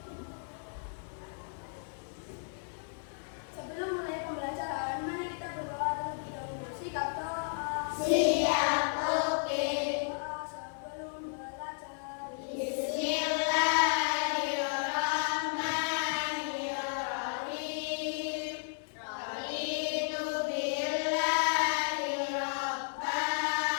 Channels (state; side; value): silent; right; 56 dB below the other